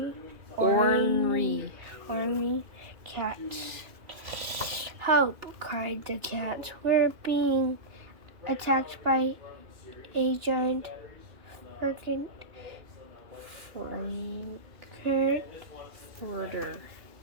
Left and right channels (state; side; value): late; left; 2.8 ms